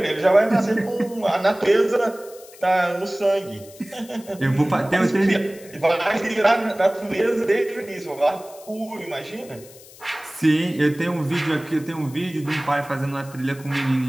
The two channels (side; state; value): left; noise; hiss, 21 dB below the sound